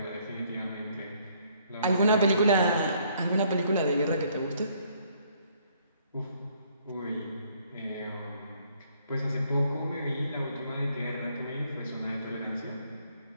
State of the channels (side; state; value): both; inverted; correlation -0.65